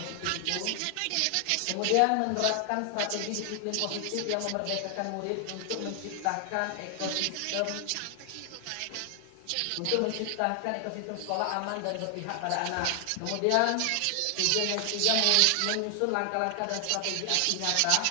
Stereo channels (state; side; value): different; both; correlation 0.00